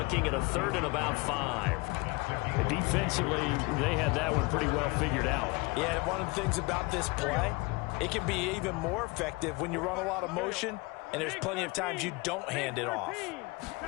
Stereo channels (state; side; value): quieter; right; 25.8 dB